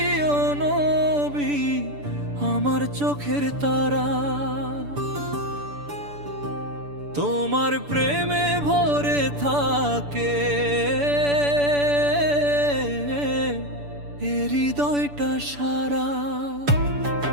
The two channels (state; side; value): late; left; 6.9 ms